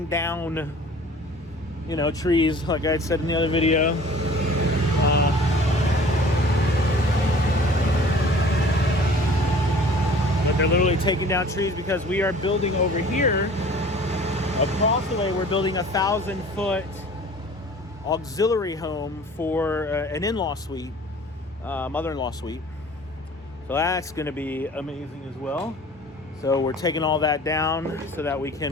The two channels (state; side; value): normal; both; correlation 0.47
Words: down, you know, trees, like I said in the other video. But they're literally taking down trees because we are building over here. Across the way, we're building a 1,000-foot auxiliary home for an in-law suite, mother-in-law suite. So that's going to be amazing as well. So we're taking all that down so that we